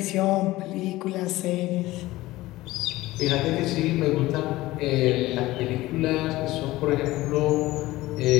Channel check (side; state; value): right; quieter; 17.9 dB